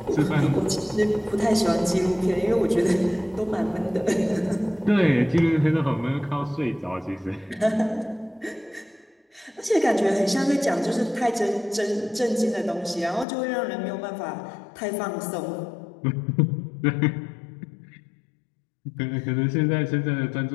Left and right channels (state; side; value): drops out; right; at 13.2 s